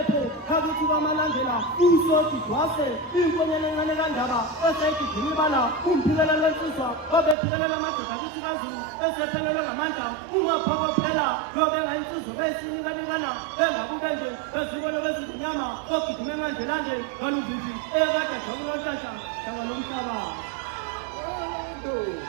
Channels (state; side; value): drops out; left; at 7.4 s